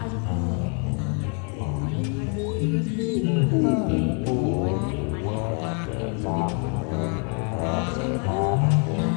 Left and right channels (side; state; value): right; quieter; 39.2 dB